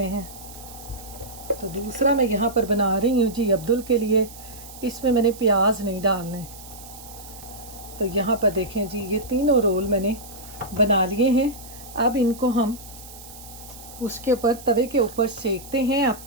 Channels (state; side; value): noise; right; hiss, 17 dB below the sound